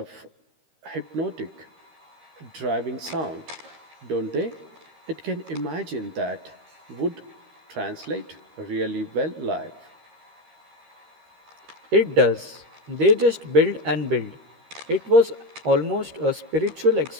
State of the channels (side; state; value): left; late; 13 ms